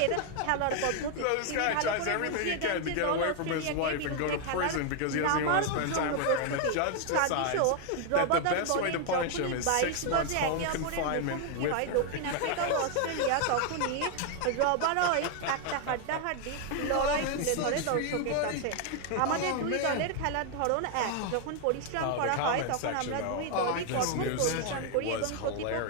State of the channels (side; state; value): both; different; correlation 0.00